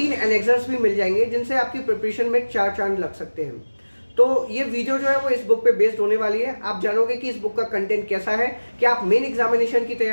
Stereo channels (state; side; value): inverted; both; correlation -1.00